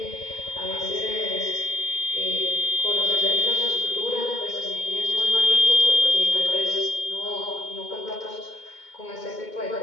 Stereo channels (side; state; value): right; late; 2.2 ms